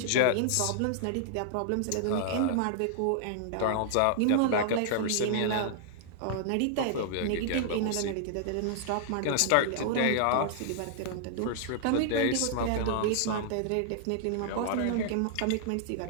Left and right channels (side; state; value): both; different; correlation -0.01